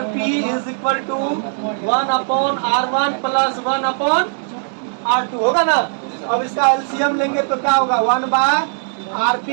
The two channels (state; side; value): silent; left; 63 dB below the other